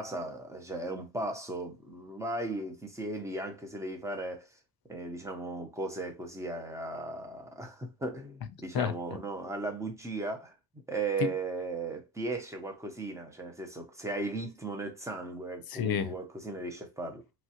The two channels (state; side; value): normal; both; correlation 0.35